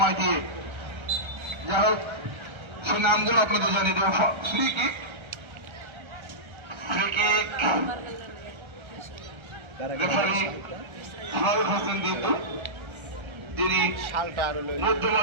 দিয়ে। যাই হোক, সেই নামগুলো আপনাদের জানিয়ে দেওয়া। Free kick, referee Faruk Hossain Ditu, যিনি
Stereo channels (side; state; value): left; late; 1.3 ms